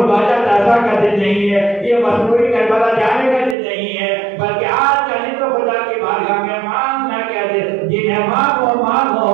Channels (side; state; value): left; drops out; at 3.6 s